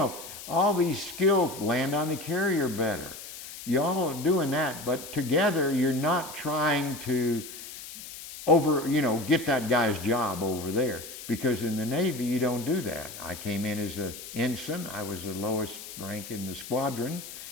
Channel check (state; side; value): noise; left; hiss, 12 dB below the sound